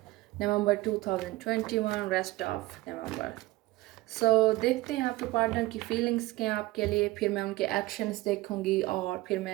November 2021, rest of November. देखते हैं आपके पार्टनर की फीलिंग्स क्या हैं आपके लिए. फिर मैं उनके एक्शंस देखूंगी और फिर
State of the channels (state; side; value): quieter; left; 19.5 dB